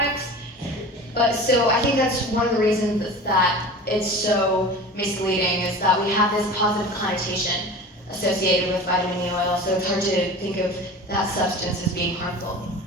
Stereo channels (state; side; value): normal; both; correlation 0.36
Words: But so I think that's one of the reasons that it's so misleading is that we have this positive connotation associated with vitamin E oil, so it's hard to think of that substance as being harmful.